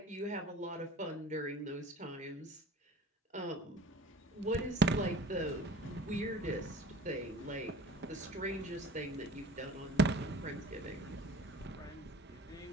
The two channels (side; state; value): both; normal; correlation 0.45